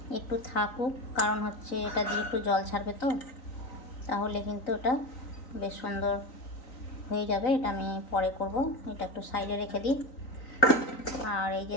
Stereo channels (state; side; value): late; right; 3.9 ms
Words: একটু থাকুক, কারণ হচ্ছে এটা দিয়ে একটু জল ছাড়বে, তো তাহলে কিন্তু এটা বেশ সুন্দর হয়ে যাবে। এটা আমি পরে করব, এটা একটু সাইডে রেখে দিই। আর এই